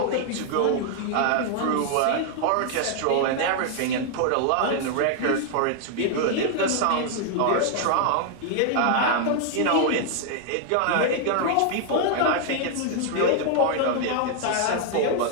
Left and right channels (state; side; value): different; both; correlation 0.00